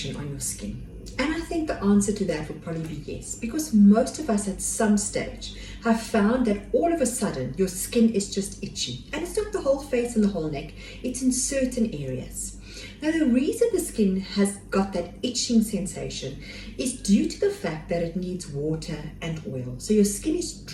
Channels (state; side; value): identical; both; correlation 1.00